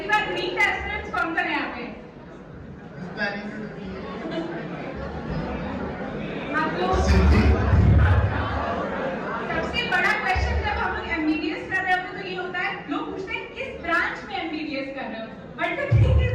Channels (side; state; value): both; identical; correlation 1.00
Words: बार नीट एस्पिरेंट्स कौन सा है यहाँ पे? Planning to do आप लोग Siddhi. सबसे बड़ा क्वेश्चन जब हम लोग MBBS कर रहे होते हैं तो ये होता है लोग पूछते हैं किस ब्रांच में MBBS कर रहे हो but the thing is